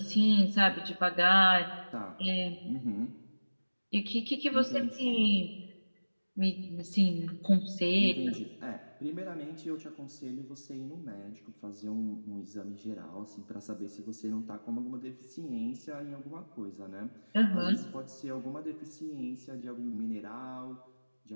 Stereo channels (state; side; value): inverted; both; correlation -1.00